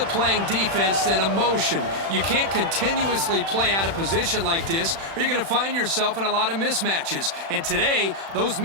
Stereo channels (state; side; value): late; left; 36 ms